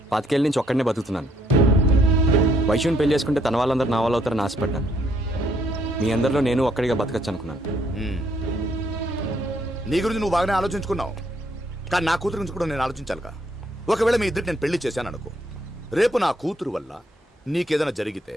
25 ఏళ్ళ నుంచి ఒక్కడనే బతుకుతున్నాను. వైషుని పెళ్లి చేసుకుంటే తన వాళ్ళందరూ నా వాళ్ళు అవుతారని ఆశపడ్డాను. మీ అందరిలో నేను ఒక్కడిగా బతకచ్చు అనుకున్నాను. నీ గురించి నువ్వు బాగానే ఆలోచించుకున్నావు, కానీ నా కూతురు గురించి కూడా నేను ఆలోచించాలిగా. ఒకవేళ మీ ఇద్దరికి నేను పెళ్లి చేశాను అనుకో, రేపు నా కూతురు వల్ల నీకేదైనా జరిగితే,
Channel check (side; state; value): both; normal; correlation 0.69